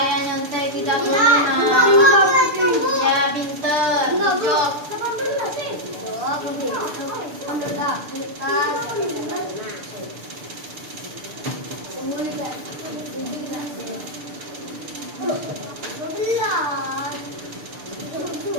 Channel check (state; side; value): late; left; 6.7 ms